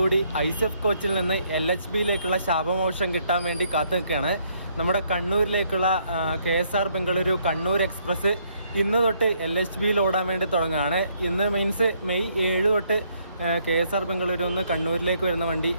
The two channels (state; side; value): inverted; both; correlation -0.70